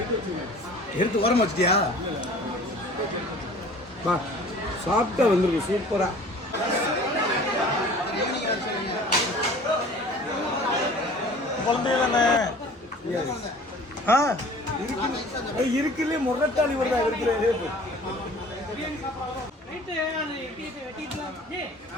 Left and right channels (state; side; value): normal; both; correlation 0.46